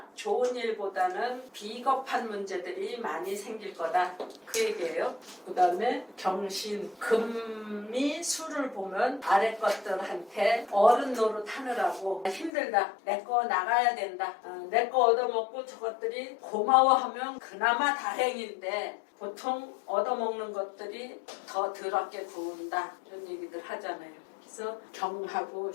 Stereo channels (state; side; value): drops out; right; at 12.5 s